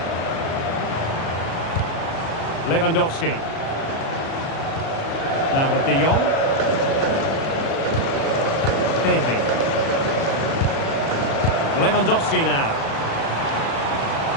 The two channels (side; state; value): right; late; 36 ms